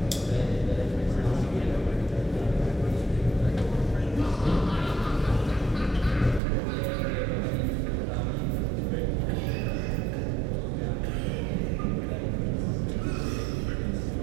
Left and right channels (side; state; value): left; drops out; at 6.4 s